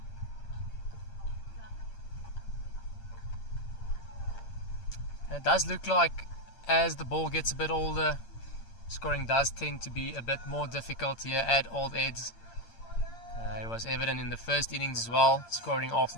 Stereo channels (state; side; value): late; right; 8.7 ms